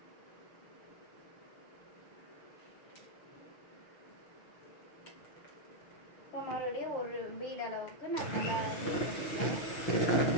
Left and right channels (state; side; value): late; right; 6.4 ms